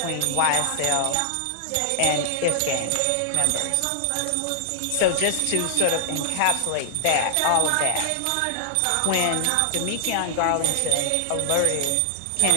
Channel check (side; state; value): both; different; correlation -0.01